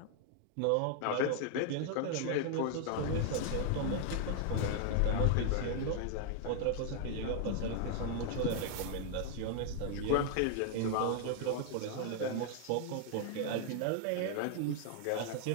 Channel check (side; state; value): both; different; correlation 0.00